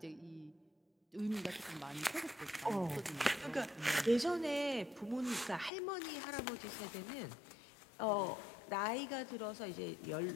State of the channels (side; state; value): right; drops out; at 5.7 s